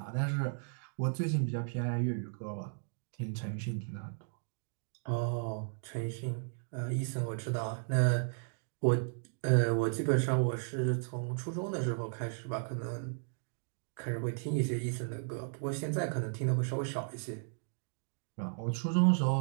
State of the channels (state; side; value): silent; left; digital silence